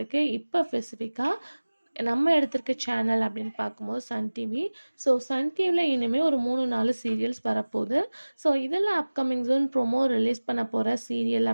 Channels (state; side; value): inverted; both; correlation -1.00